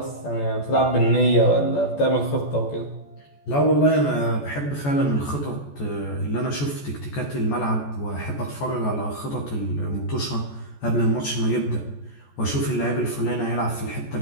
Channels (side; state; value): right; late; 14 ms